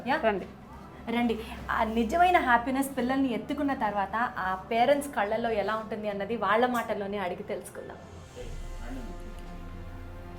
రండి. ఆ నిజమైన హ్యాపీనెస్ పిల్లల్ని ఎత్తుకున్న తర్వాత ఆ పేరెంట్స్ కళ్ళల్లో ఎలా ఉంటుంది అన్నది వాళ్ళ మాటల్లోనే అడిగి తెలుసుకుందాం.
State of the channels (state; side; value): identical; both; correlation 1.00